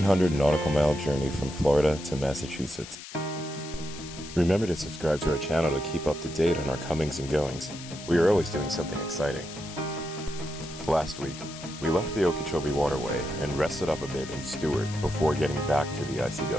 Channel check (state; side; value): noise; left; hiss, 14 dB below the sound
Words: nautical mile journey from Florida to Massachusetts. Remember to subscribe to our channel to keep up to date on our comings and goings. We are always doing something exciting. Last week, we left the Okeechobee Waterway and rested up a bit in Stuart before getting back to the